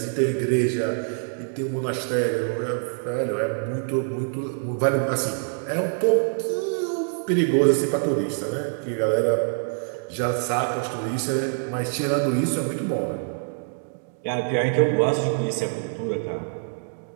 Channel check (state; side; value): silent; left; digital silence